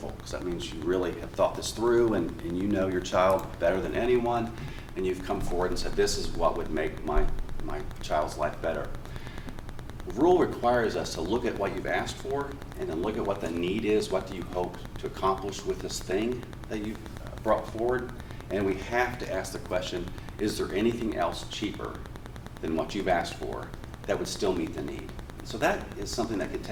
because that means you really have thought this through and you know your child better than anyone, and you've come forward and said, this is what would make my child's life better. Rule requires us to look at what you've asked for and then look at what the need is, what do you hope to accomplish with this thing that you've brought forward, and we have to ask the question, is there anything else cheaper than what you've asked for that would still meet the need? So that is something that could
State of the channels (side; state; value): both; identical; correlation 1.00